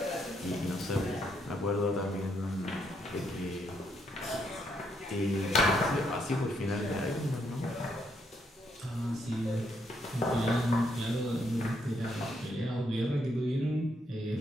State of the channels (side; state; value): both; normal; correlation 0.75